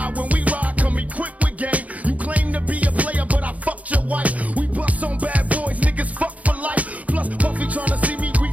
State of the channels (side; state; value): left; late; 0.070 ms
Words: when we ride, come equipped with game. You claim to be a player, but I fucked your wife. We bust on bad boys, niggas fuck for life. Plus, Puffy tryna see me